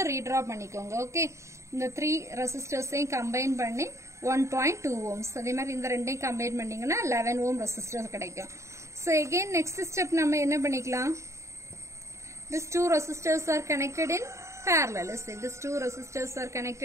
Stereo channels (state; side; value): late; left; 0.14 ms